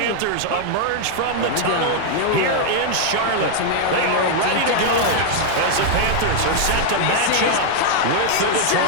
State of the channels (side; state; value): both; different; correlation 0.00